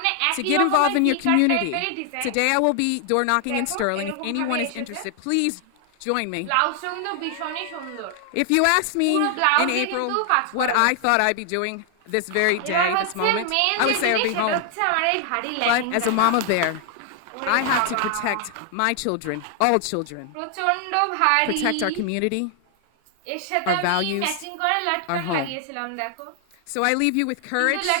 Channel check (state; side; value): different; both; correlation 0.00